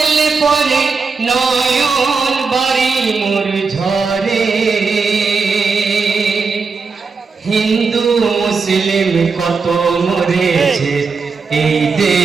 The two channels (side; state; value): left; quieter; 4.8 dB